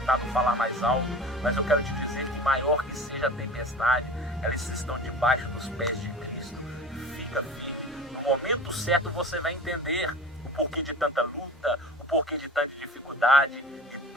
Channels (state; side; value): normal; both; correlation 0.37